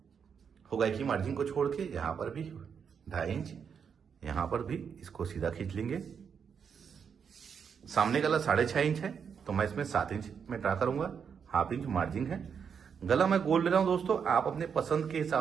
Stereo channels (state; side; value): quieter; left; 6.9 dB